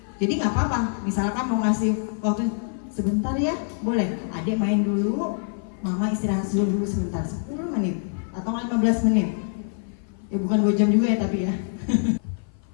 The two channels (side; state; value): right; silent; 56 dB below the other